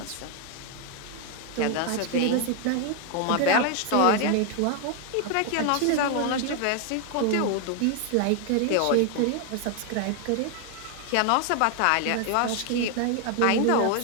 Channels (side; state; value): both; different; correlation 0.00